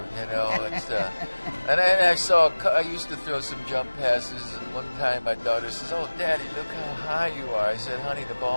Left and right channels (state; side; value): inverted; both; correlation -1.00